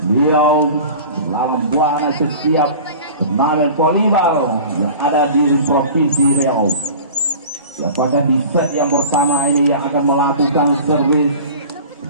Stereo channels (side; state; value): both; inverted; correlation -0.39